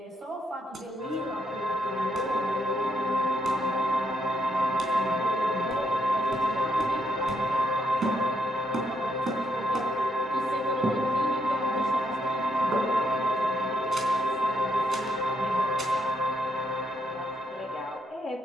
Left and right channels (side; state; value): both; normal; correlation 0.76